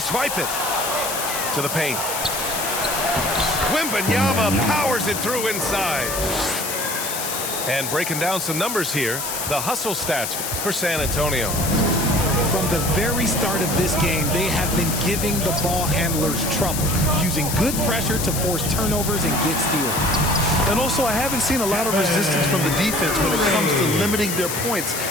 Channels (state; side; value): noise; left; hiss, 4 dB below the sound